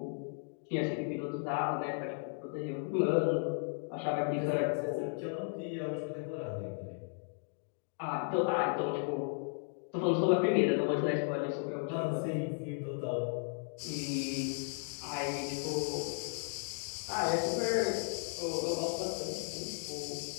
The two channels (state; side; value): silent; right; 54 dB below the other